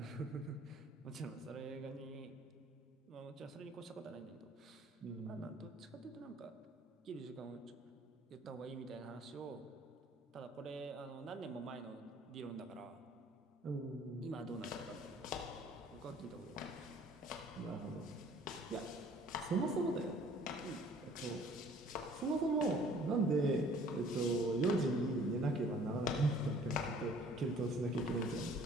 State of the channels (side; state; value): both; normal; correlation 0.54